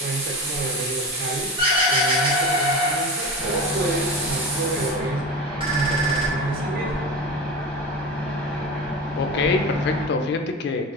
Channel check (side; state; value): both; normal; correlation 0.27